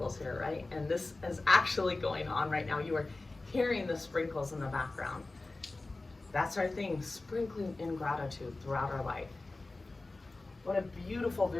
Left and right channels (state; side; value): quieter; right; 3.2 dB